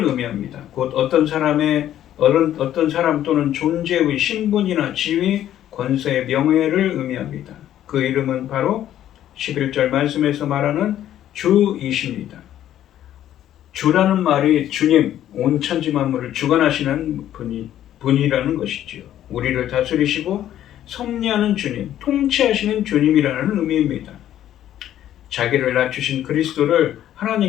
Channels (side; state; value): right; quieter; 11.7 dB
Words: 의미합니다. 곧 어떤 사람 또는 존재의 신분이나 지위, 권세의 명예를 의미합니다. 그 이름은 바로 11절 말씀에서 말하는 주이십니다. 주라는 말이 주님, 온 천지 만물을 주관하시는 분이라는 것이지요. 우리를 다스리시고 섭리하는 주님, 통치하시는 주님이라는 의미입니다. 자기를 낮추신 그리스도를